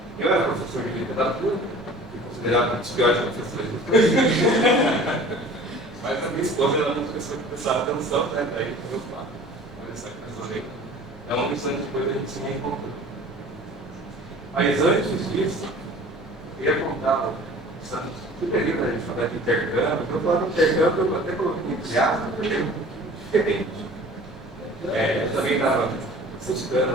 Eu era professor de literatura, fui considerado um dos piores professores do cursinho. Mas a minha esposa era uma pessoa que prestava atenção, né? Daí eu falo, olha essa coisa aí. É uma questão de coisa a gente se reencontrou. Mas antes disso, eu ia contar o período a gente falar de intercâmbio. Eu falava de intercâmbio, eu até coloquei entre aspas, porque é um pouquinho diferente. Eu também estava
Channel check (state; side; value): normal; both; correlation 0.45